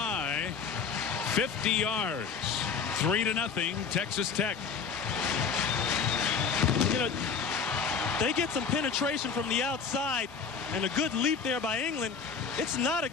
50 yards, 3-0, Texas Tech. You know, they get some penetration from the outside and a good leap there by England. It's not a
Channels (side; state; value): right; quieter; 6.0 dB